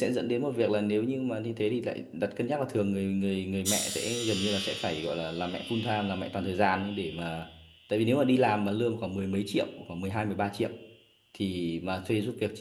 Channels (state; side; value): identical; both; correlation 1.00